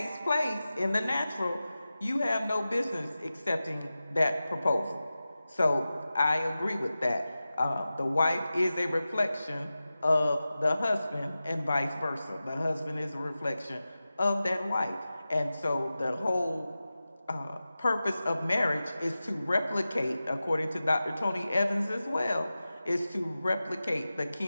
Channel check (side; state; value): both; inverted; correlation -0.95